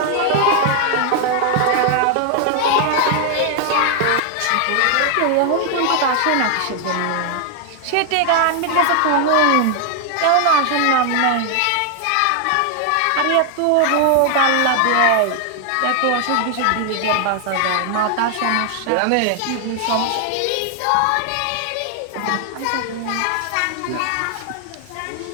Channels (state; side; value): different; both; correlation 0.00